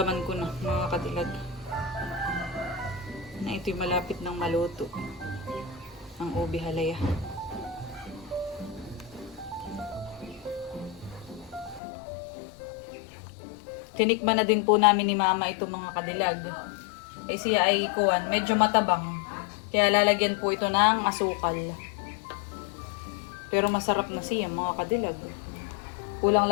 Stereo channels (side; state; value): right; drops out; at 11.8 s